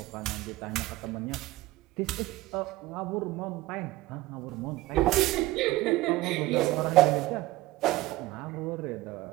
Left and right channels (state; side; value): quieter; left; 18.3 dB